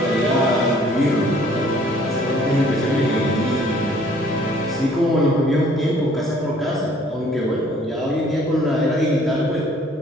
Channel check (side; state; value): both; normal; correlation 0.58